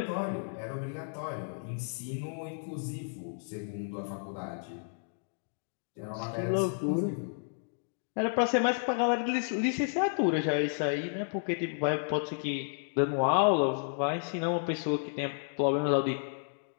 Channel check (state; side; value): silent; right; digital silence